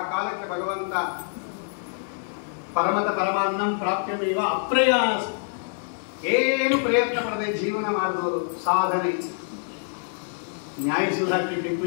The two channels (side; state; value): right; silent; digital silence